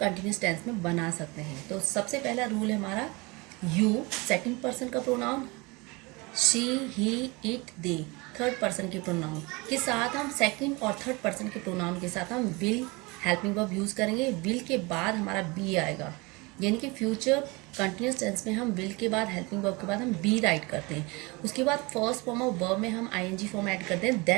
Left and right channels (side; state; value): left; quieter; 25.9 dB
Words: टेंस में बना सकते हैं। तो सबसे पहला रूल है हमारा यू, सेकंड पर्सन का pronoun, she, he, it, they third person के प्रोनाउन के साथ हम सेकंड और थर्ड पर्सन के प्रोनाउन के साथ हम विल हेल्पिंग वर्ब यूज करेंगे। विल के बाद हमारा बी आएगा, यानी कि फ्यूचर कंटिन्यूस टेंस में हम विल के बाद हेल्पिंग वर्ब के बाद हम बी राइट करते हैं। उसके बाद फर्स्ट फॉर्म ऑफ वर्ब में हम आईएनजी फॉर्म ऐड करते हैं,